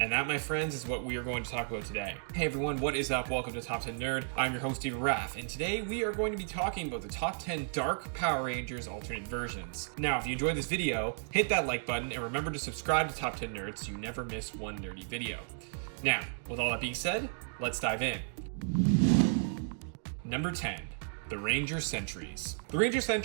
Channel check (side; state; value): left; silent; digital silence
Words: that, my friends, is what we are going to talk about today. Hey everyone, what is up? Welcome to Top 10 Nerd. I'm your host, Steven Raff, and today we are going to be talking about the top 10 Dark Power Rangers alternate versions. Now, if you enjoyed this video, hit that like button and remember to subscribe to Top 10 Nerd so you never miss one nerdy video. Now, with all that being said, let's dive in. Number 10, the Ranger Sentries. The Ranger